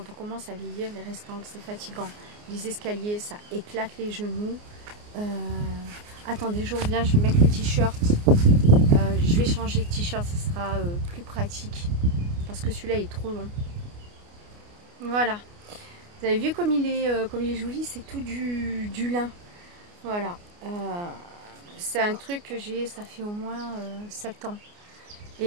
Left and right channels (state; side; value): late; left; 29 ms